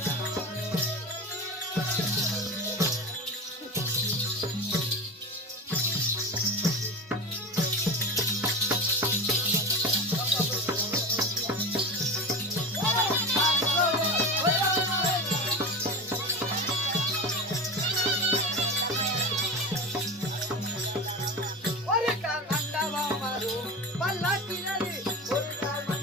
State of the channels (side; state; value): both; normal; correlation 0.26